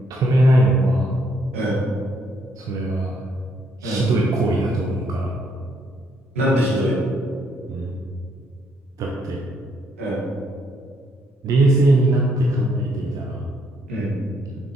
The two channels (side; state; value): both; normal; correlation 0.72